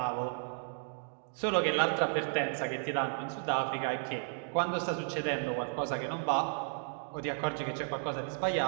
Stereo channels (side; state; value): left; silent; digital silence